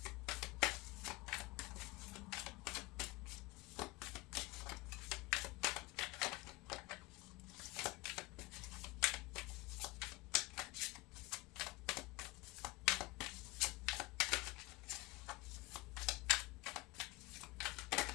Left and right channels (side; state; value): right; quieter; 23.4 dB